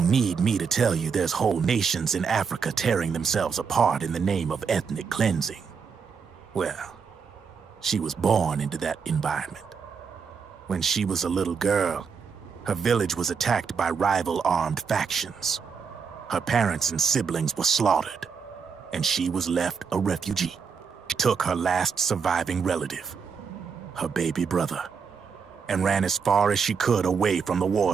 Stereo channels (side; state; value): left; quieter; 6.0 dB